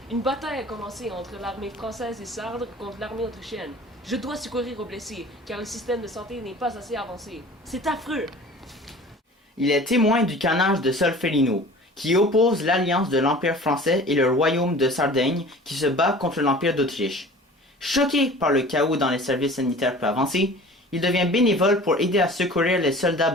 Une bataille a commencé entre l'armée française et sarde contre l'armée autrichienne. Je dois secourir aux blessés, car le système de santé n'est pas assez avancé. C'est affreux! Il est témoin du carnage de Solferino, qui oppose l'alliance de l'Empire français et le royaume de Sardaigne qui se bat contre l'Empire d'Autriche. Choqué par le chaos dans les services sanitaires peu avancés, il devient bénévole pour aider à secourir les soldats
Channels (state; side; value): normal; both; correlation 0.43